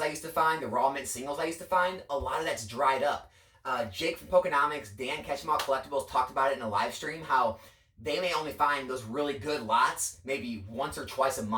I used to find, the raw mint singles I used to find, a lot of that's dried up. Jake from Pokenomics, Dan Catch 'em All Collectibles talked about it in a live stream, how they may only find those really good lots maybe once or twice a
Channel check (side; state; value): both; identical; correlation 1.00